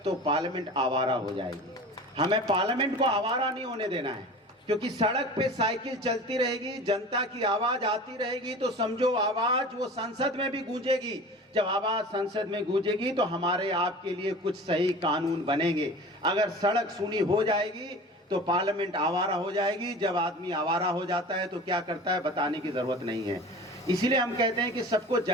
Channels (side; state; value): both; normal; correlation 0.38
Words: तो पार्लियामेंट आवारा हो जाएगी। हमें पार्लियामेंट को आवारा नहीं होने देना है, क्योंकि सड़क पे साइकिल चलती रहेगी, जनता की आवाज आती रहेगी, तो समझो आवाज वो संसद में भी गूंजेगी। जब आवाज संसद में गूंजेगी तो हमारे आपके लिए कुछ सही कानून बनेंगे। अगर सड़क सूनी हो जाएगी तो पार्लियामेंट आवारा हो जाएगी। जब आदमी आवारा हो जाता है तो क्या करता है बताने की जरूरत नहीं है। इसीलिए हम कहते हैं कि सबको